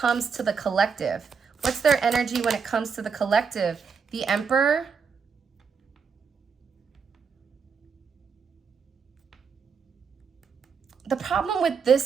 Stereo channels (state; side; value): quieter; left; 5.9 dB